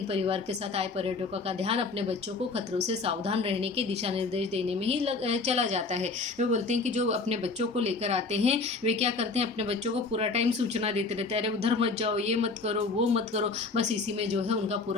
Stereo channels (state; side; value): quieter; right; 4.0 dB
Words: परिवार के साथ आए पर्यटकों का ध्यान अपने बच्चों को खतरों से सावधान रहने के दिशा निर्देश देने में ही चला जाता है। वे बोलते हैं कि जो अपने बच्चों को लेकर आते हैं वे क्या करते हैं, अपने बच्चों को पूरा टाइम सूचना देते रहते हैं, अरे उधर मत जाओ, ये मत करो, वो मत करो। बस इसी में जो है उनका